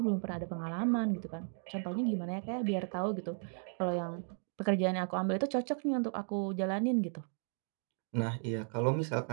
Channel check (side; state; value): left; silent; 54 dB below the other